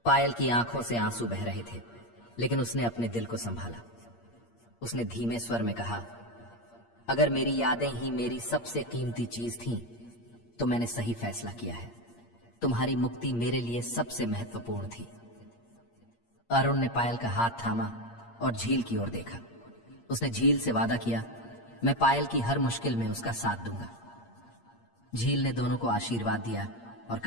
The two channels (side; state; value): right; late; 8.6 ms